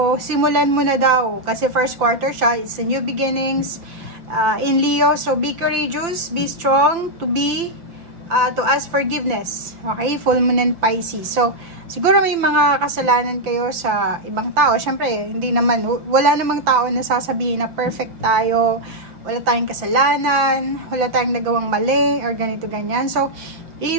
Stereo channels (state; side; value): late; left; 5.8 ms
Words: simulan mo na daw. Kasi first quarter siya. It's a new beginnings in Leo. So, be courageous. Be strong. To ask forgiveness. Okay? Full moon in Pisces. So, siguro may mga kasalanan kayo sa ibang tao. Siyempre, hindi naman. Wala namang tao na sasabihin na perfect tayo. Wala tayong kasalanan. Wala tayong nagawang mali. Or ganito, ganyan. So,